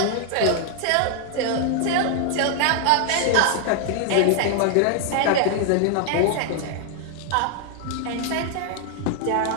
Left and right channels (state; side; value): different; both; correlation 0.00